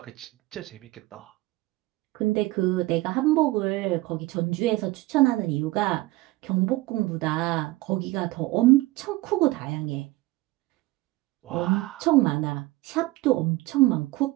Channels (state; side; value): quieter; left; 19.3 dB